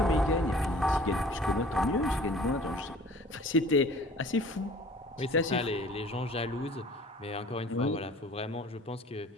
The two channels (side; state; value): both; normal; correlation 0.48